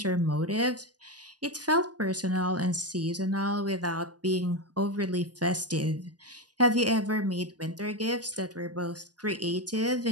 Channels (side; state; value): left; late; 0.69 ms